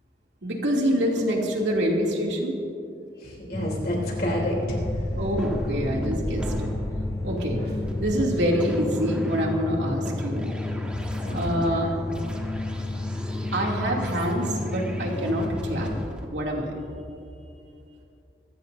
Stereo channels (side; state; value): both; normal; correlation 0.60